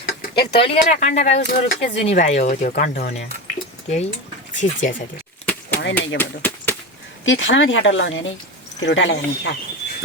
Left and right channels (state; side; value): normal; both; correlation 0.22